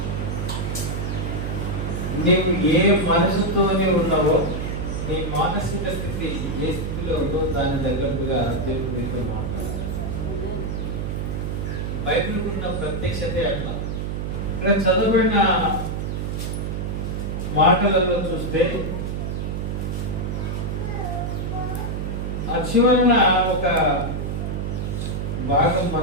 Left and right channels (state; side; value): noise; right; hum, 3 dB below the sound